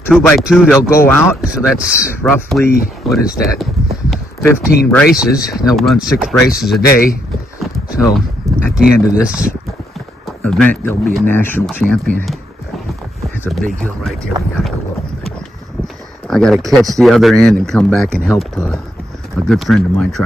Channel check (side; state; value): both; normal; correlation 0.76